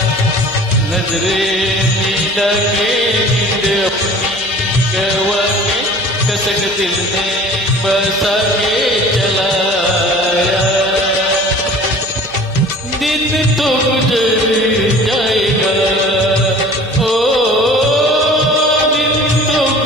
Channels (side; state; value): both; normal; correlation 0.45